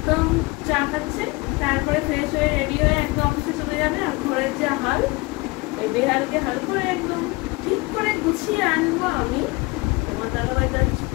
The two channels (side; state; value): right; quieter; 24.3 dB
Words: চা খাচ্ছে, তারপরে ফ্রেশ হয়ে রেডি হয়ে একদম অফিসে চলে যাবে। আর ঘরের যে হাল, এই বেহালকে হাল করে একদম ঠিক করে গুছিয়ে আনবো আমি। তোমার দাদাভাই তো কিছু